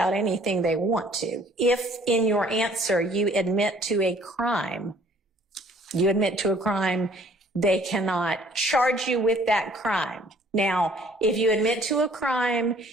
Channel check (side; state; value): both; normal; correlation 0.57